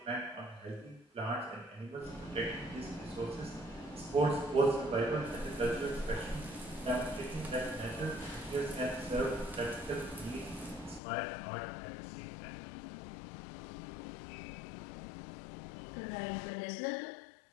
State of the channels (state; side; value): drops out; right; at 11.0 s